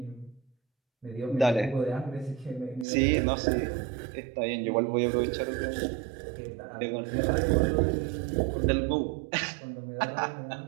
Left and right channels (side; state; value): left; drops out; at 2.9 s